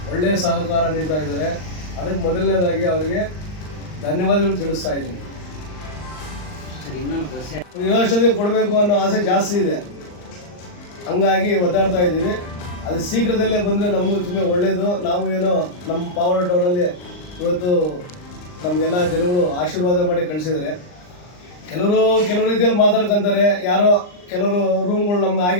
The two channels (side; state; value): right; late; 39 ms